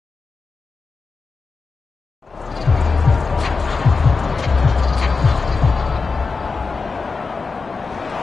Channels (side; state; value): right; quieter; 4.5 dB